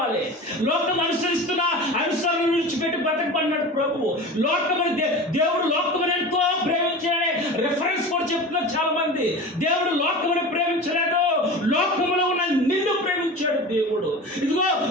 లోకం అనుసరిస్తున్న అనుసరణ విడిచిపెట్టి బ్రతకమన్నాడు ప్రభువు. దేవుడు లోకమును ఎంతో ప్రేమించాడనే రెఫరెన్స్ కూడా చెప్తున్నారు చాలా మంది. దేవుడు లోకమును ప్రేమించలేదు, లోకములో ఉన్న నిన్ను ప్రేమించాడు దేవుడు. ఇదిగో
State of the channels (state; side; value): normal; both; correlation 0.33